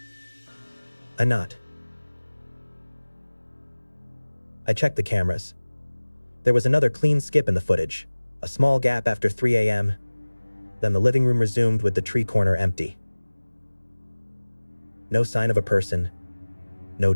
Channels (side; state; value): both; inverted; correlation -1.00